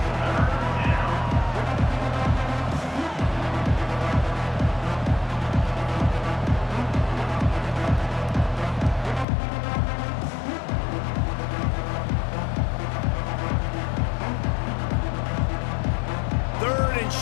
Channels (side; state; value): right; drops out; at 9.2 s